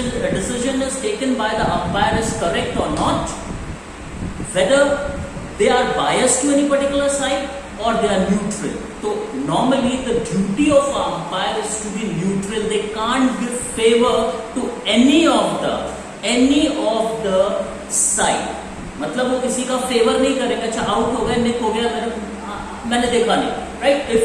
is taken by the umpire is correct or not, whether they are biased to any particular side or they are neutral. So normally the duty of an umpire is to be neutral. They can't give favor to any of the side. मतलब वो किसी का favour नहीं करेगा. अच्छा out हो गया, निक हो गया, मैंने देखा नहीं, right?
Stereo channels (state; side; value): identical; both; correlation 1.00